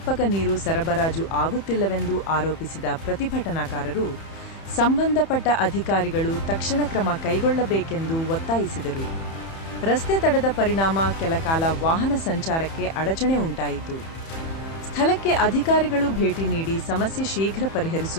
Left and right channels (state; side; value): late; right; 31 ms